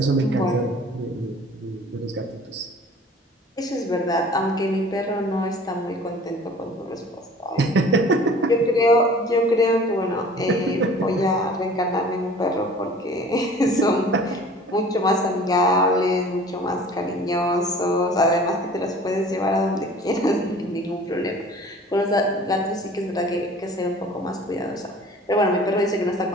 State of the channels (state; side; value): normal; both; correlation 0.47